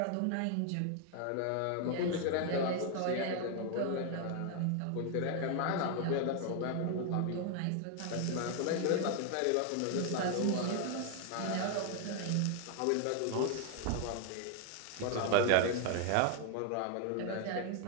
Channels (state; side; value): different; both; correlation 0.01